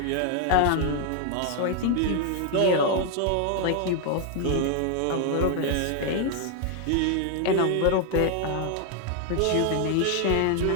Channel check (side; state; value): both; different; correlation 0.00